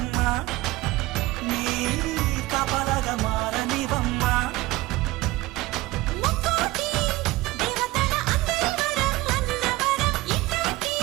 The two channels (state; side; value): quieter; left; 19.2 dB